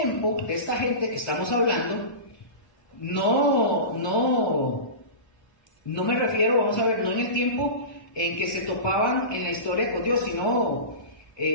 de esta gente que estamos hablando, no me refiero, vamos a ver, no en el tiempo en que se topaban en la historia con Dios, sino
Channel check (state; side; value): late; right; 1.2 ms